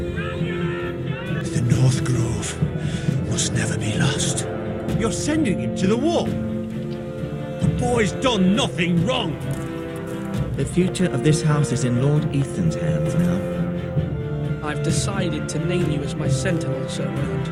The North Grove must never be lost. You're sending him to the wall. The boy's done nothing wrong. The future of this house is in Lord Ethan's hands now. I've decided to name you as my sentinel, Sir Round.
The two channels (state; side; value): identical; both; correlation 1.00